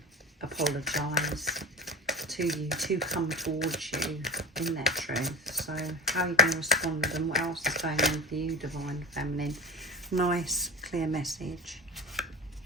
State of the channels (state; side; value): normal; both; correlation 0.33